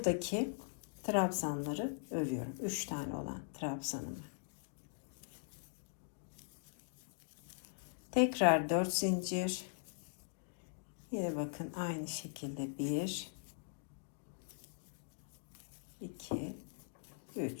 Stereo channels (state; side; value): silent; right; digital silence